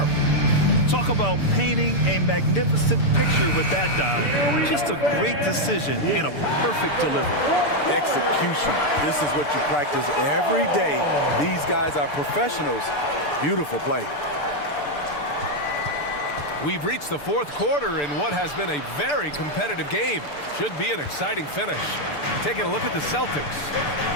Talk about painting a magnificent picture with that dime. Just a great decision and a perfect delivery. Execution. This is what you practice every day. These guys are professionals. Beautiful play. We've reached the fourth quarter in what has been a very competitive game. Should be an exciting finish. Taking a look at the Celtics.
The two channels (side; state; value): right; late; 6.8 ms